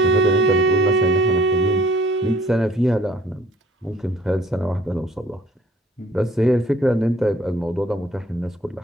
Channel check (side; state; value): both; normal; correlation 0.56